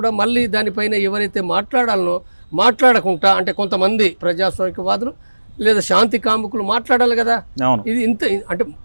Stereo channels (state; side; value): inverted; both; correlation -1.00